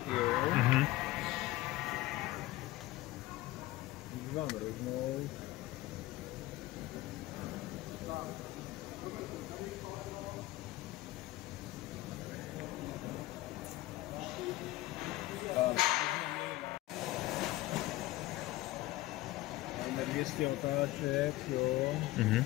jo? Vám roznout. Máme 200 otáček, jo?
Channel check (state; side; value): quieter; right; 17.5 dB